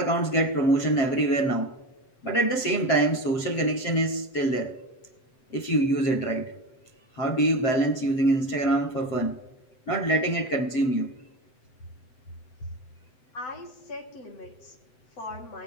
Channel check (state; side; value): late; right; 7.9 ms